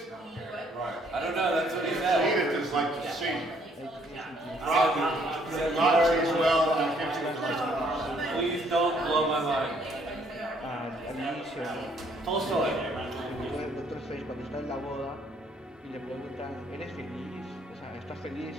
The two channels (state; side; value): normal; both; correlation 0.66